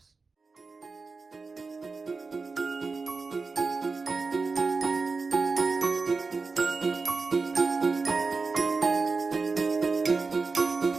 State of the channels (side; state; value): left; quieter; 4.3 dB